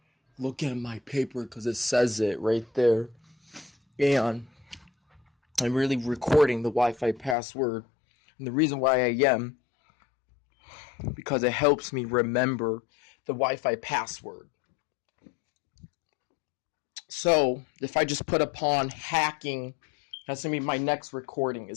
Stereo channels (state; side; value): drops out; right; at 7.4 s